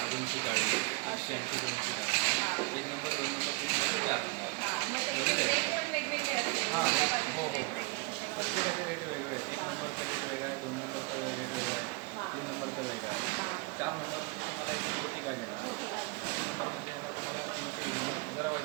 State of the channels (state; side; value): quieter; left; 28.0 dB